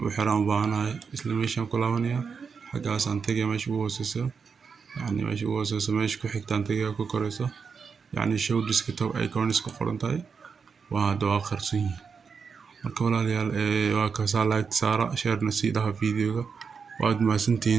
u xiro aan u baahanahay isla meeshaan ku laabanayaa xaggaas aan tagayaa meesha ugu hooseyso yani meesha ugu hooseyso meesha ku xigtaan tagayaa ku koreyso yani show desktop icons ku qoran tahay waa hadda waa qarsoon yihiin. marka walaalayaal waa kaasa like saara share na sii dhaha videoga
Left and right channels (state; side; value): quieter; left; 5.7 dB